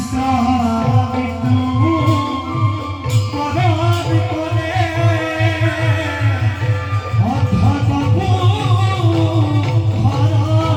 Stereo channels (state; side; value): identical; both; correlation 1.00